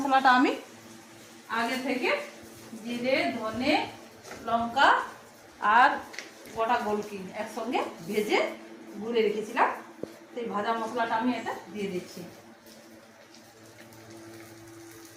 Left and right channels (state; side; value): identical; both; correlation 1.00